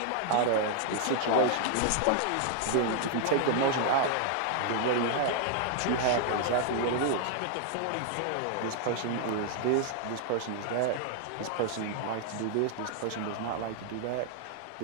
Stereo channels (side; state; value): both; different; correlation 0.00